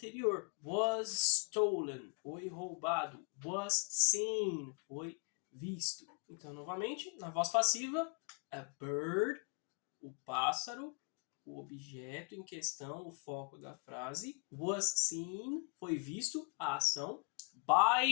Was stolen, foi roubado. Was seen, foi visto. Então, novamente, na voz passiva, a bird, o pássaro, o objeto em questão, o foco da frase. Was seen, foi visto, a ação.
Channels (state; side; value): quieter; right; 36.2 dB